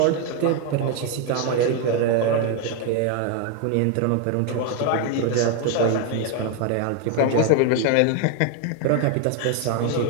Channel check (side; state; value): both; different; correlation 0.01